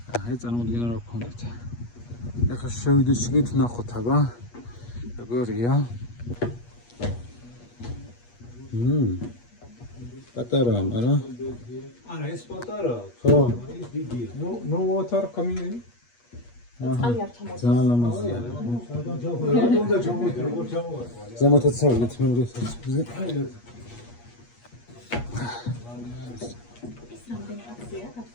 აი წარმოუდგენლად რა გქონდეთ. ეხლა შევიდეთ შიგნით ნახოთ აბა როგორია. პატარაა, მაგრამ არა ეს პატარა. ხო. ის დიდია. No water coming in. ძალიან ლამაზია. ზემოთაც წავიდეთ მეორე საცხოვრებლზე.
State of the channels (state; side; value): late; right; 8.4 ms